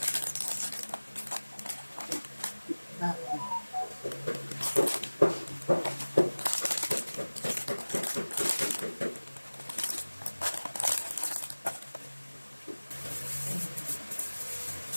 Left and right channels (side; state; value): both; inverted; correlation -1.00